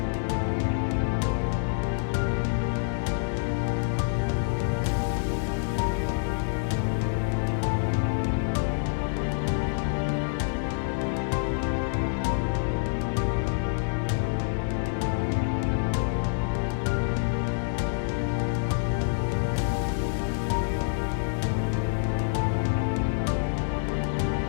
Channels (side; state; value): right; silent; digital silence